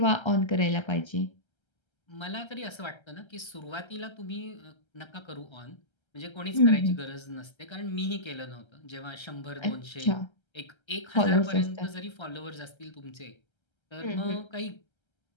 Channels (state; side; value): late; right; 1.3 ms